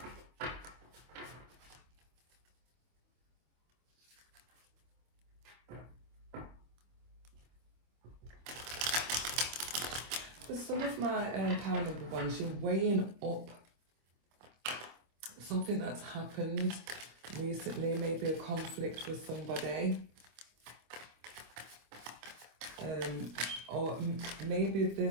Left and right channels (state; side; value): late; left; 25 ms